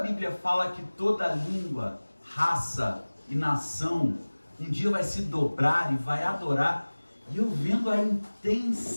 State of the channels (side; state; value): both; inverted; correlation -1.00